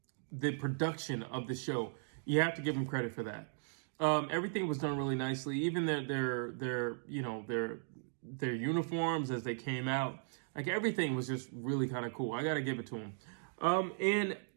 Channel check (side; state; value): left; silent; digital silence